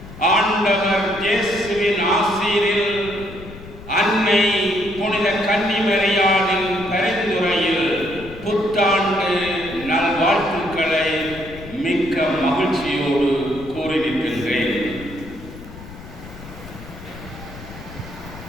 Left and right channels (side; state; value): left; noise; rumble, 15 dB below the sound